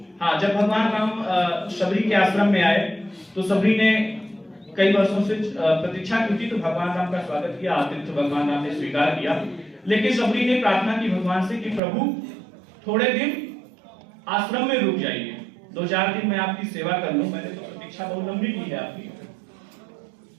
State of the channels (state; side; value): drops out; left; at 11.8 s